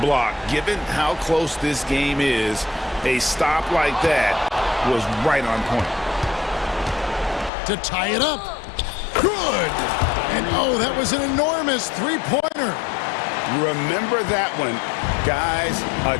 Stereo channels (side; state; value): right; drops out; at 7.5 s